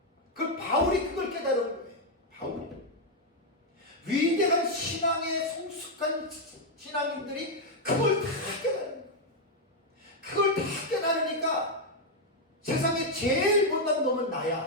그 바울이 그걸 깨달은 거예요. 바울이. 위대한 신앙의 성숙한 신앙인들이 그걸 다 깨달은 거예요. 그걸 다 깨달으니까 세상에 제일 못난 놈은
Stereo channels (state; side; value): normal; both; correlation 0.00